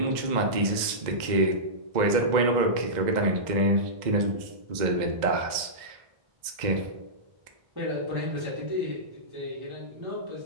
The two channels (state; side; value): late; left; 2.0 ms